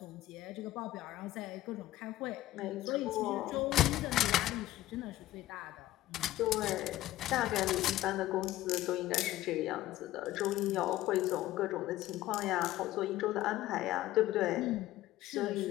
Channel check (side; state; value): right; quieter; 15.3 dB